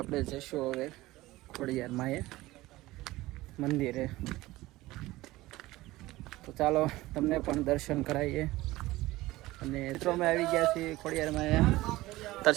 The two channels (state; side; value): quieter; left; 18.3 dB